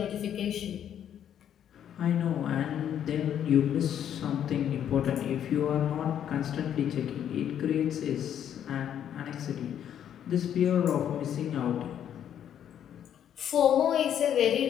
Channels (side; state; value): right; quieter; 9.7 dB